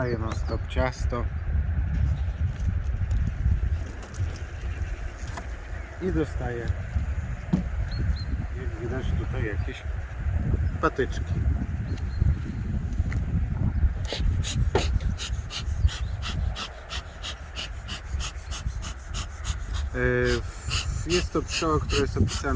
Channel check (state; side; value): identical; both; correlation 1.00